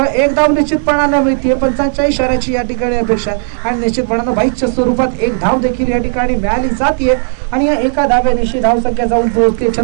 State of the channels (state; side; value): silent; left; 61 dB below the other